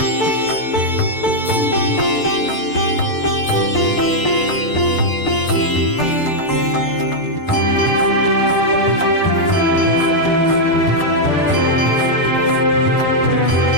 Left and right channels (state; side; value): late; right; 6.7 ms